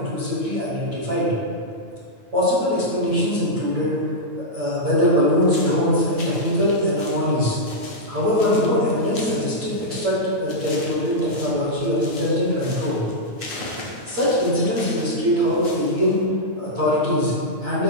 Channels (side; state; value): left; late; 9.2 ms